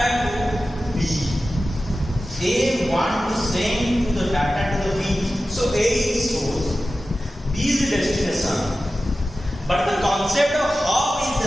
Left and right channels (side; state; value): both; normal; correlation 0.94